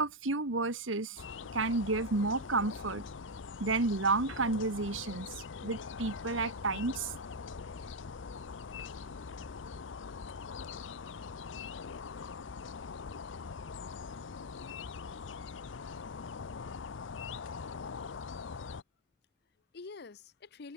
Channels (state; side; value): normal; both; correlation 0.02